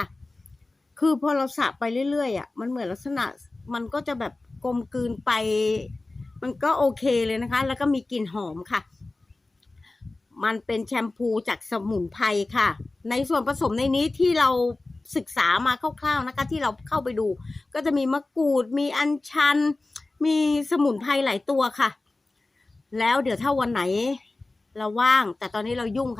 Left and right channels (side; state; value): right; quieter; 3.1 dB